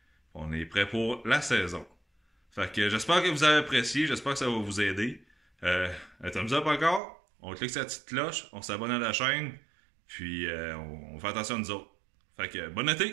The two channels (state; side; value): drops out; left; at 7.0 s